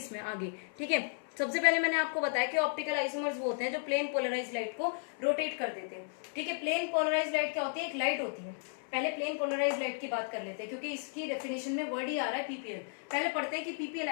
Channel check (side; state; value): right; silent; 55 dB below the other